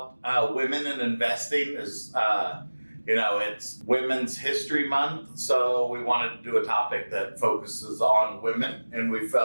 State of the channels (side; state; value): both; inverted; correlation -1.00